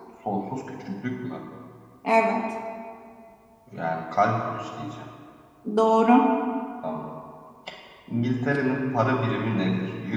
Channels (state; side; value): identical; both; correlation 1.00